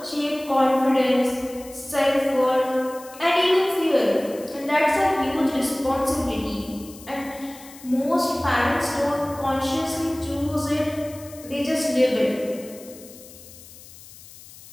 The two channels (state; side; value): noise; left; hiss, 19 dB below the sound